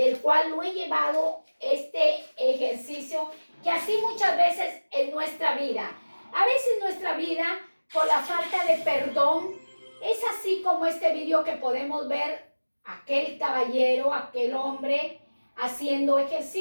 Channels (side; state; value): both; inverted; correlation -1.00